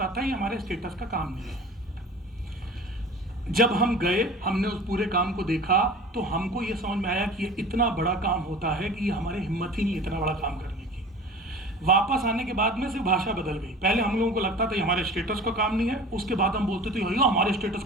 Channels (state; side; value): normal; both; correlation 0.40